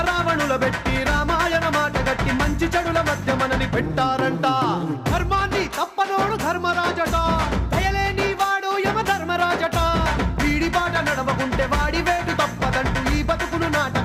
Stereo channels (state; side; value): identical; both; correlation 1.00